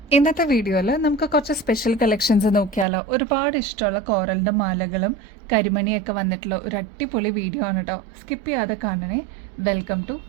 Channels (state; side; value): drops out; left; at 2.9 s